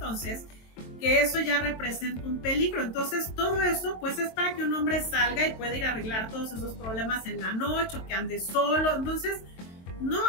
que eso ya representa un peligro. Entonces todo eso pues es para que un hombre salga y pueda ir a arreglar todos esos problemas en la noche o que ande solo. Entonces no,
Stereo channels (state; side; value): late; right; 23 ms